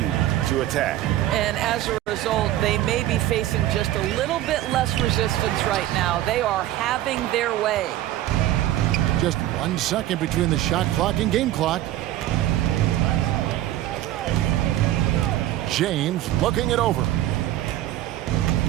to attack. And as a result, they may be facing just a little bit less resistance right now. They are having their way. Just 1 second between the shot clock and game clock. James looking it over.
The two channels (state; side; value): quieter; left; 14.1 dB